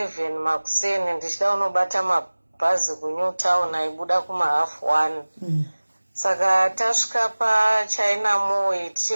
makuseni ndichida unobata mabhazi kuNewtown aibuda kuma 1:30. Saka tasvika paChina Mall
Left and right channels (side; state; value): both; inverted; correlation -1.00